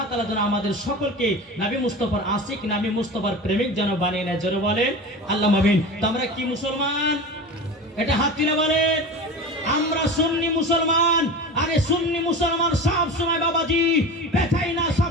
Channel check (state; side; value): normal; both; correlation 0.31